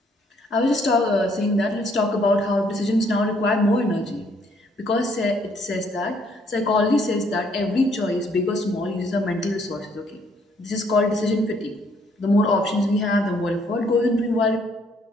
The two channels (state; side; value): normal; both; correlation 0.67